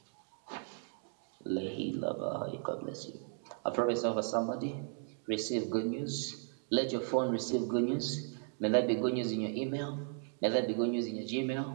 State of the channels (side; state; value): left; silent; 54 dB below the other